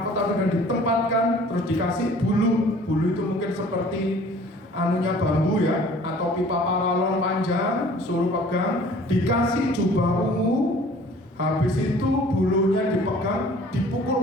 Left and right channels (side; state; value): both; normal; correlation 0.51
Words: dan ditempatkan, terus dikasih bulu itu mungkin seperti bambu ya, atau pipa paralon panjang, suruh pegang, dikasih jubah ungu, habis itu bulunya dipegang,